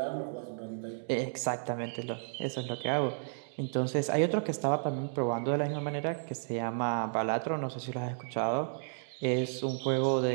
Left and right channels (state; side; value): silent; left; digital silence